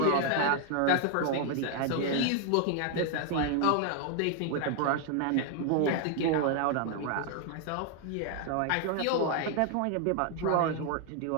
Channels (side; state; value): both; different; correlation 0.00